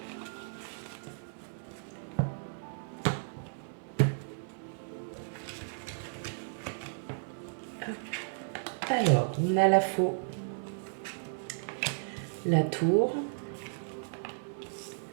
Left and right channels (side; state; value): left; silent; 55 dB below the other